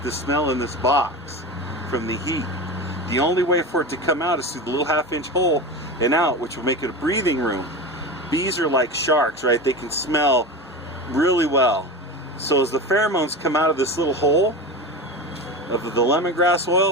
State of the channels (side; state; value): both; normal; correlation 0.26